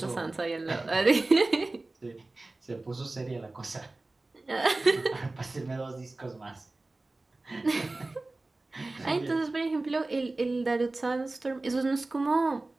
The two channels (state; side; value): quieter; left; 3.1 dB